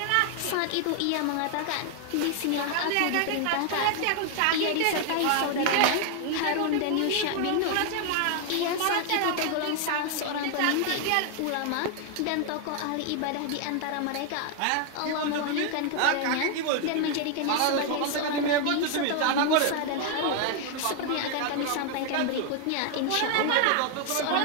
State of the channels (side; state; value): both; different; correlation 0.00